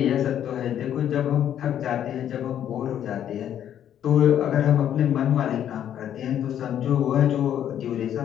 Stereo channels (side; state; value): right; quieter; 10.2 dB